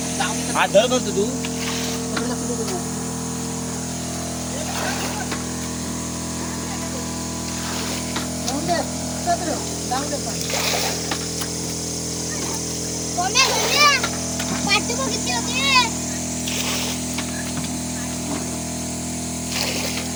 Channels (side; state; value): both; identical; correlation 1.00